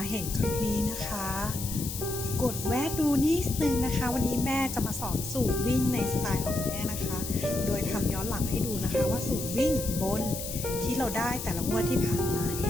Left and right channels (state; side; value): noise; left; hiss, 7 dB below the sound